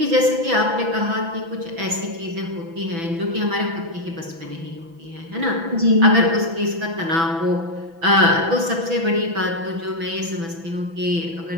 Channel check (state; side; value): late; left; 6.0 ms